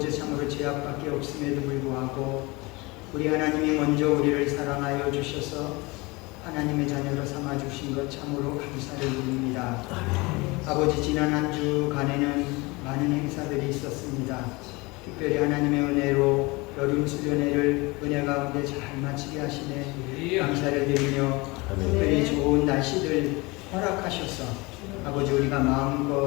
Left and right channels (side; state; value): right; quieter; 24.6 dB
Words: 참으로 죄악밖에 없음에도 불구하고 우리 하나님이 먼저 우리를 사랑하여 주셔서 하나님의 자녀로 삼아 주신 것 참으로 감사를 드립니다. 아버지, 지난 한 주간에는 많은 행사들이 있었습니다. 특별히 하나님의 은혜로 여름 수련회를 은혜 가운데 잘 마치게 하시네 감사를 드리며 특별히 좋은 날씨들 허락하셔서 아버지 우리가